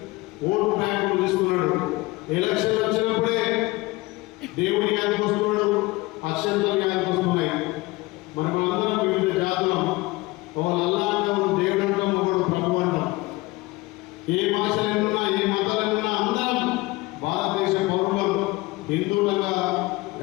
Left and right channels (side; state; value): right; quieter; 21.3 dB